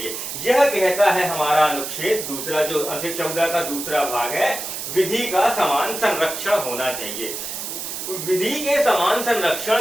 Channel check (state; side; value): noise; right; hiss, 6 dB below the sound